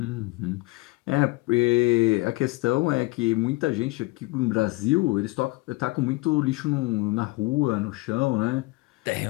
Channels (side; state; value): right; quieter; 23.1 dB